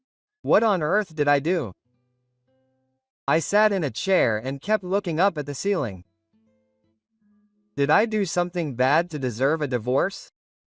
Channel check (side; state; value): both; identical; correlation 1.00